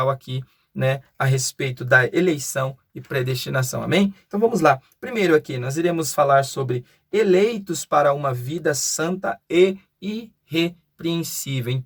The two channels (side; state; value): both; identical; correlation 1.00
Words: aqui, né, a respeito da eleição e predestinação. Amém? Então vamos lá. Primeiro aqui, nós iremos falar sobre eleitos para uma vida santa e irrepreensível.